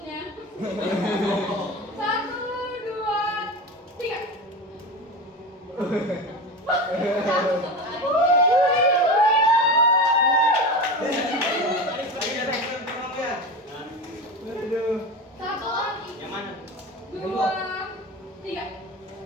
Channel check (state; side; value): normal; both; correlation 0.26